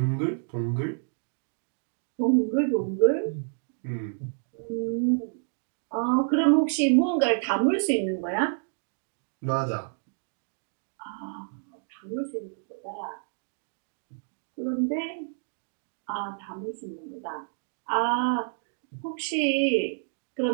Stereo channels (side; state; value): left; silent; digital silence